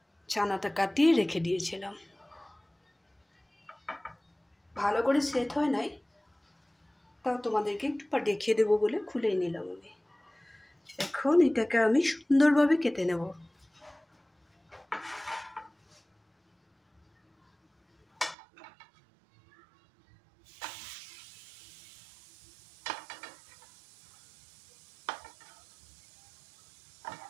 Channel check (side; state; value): left; drops out; at 18.4 s